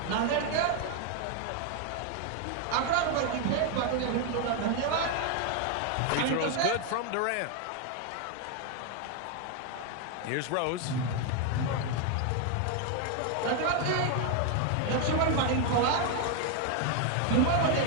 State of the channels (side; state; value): both; different; correlation 0.01